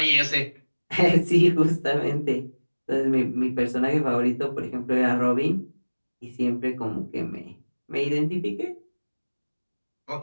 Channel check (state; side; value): inverted; both; correlation -1.00